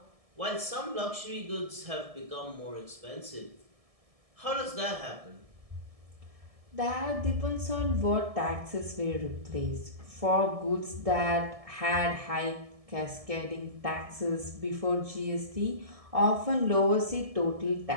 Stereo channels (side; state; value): left; late; 1.7 ms